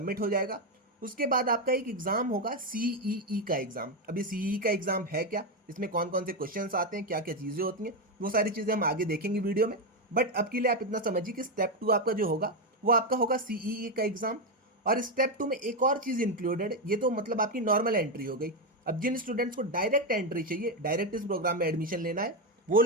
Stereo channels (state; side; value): normal; both; correlation 0.07